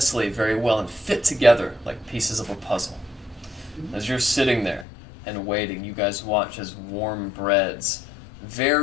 very well and fit together like pieces of a puzzle. As you're sitting there and waiting, you guys watch as warm breads,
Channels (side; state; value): right; drops out; at 4.9 s